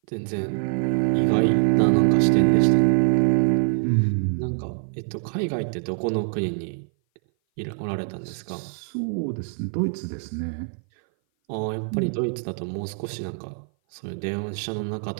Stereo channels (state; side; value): silent; left; 58 dB below the other